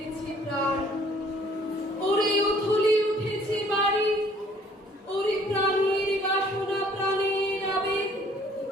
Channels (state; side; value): normal; both; correlation 0.58